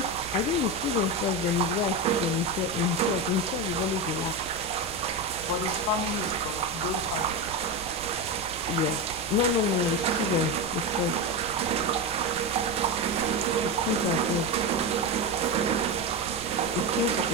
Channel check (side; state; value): right; noise; rumble, 17 dB below the sound